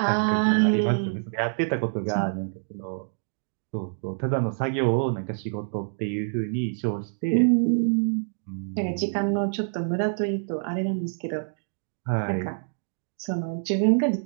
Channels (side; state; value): left; silent; digital silence